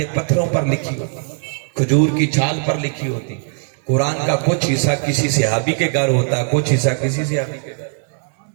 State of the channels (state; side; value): silent; left; 66 dB below the other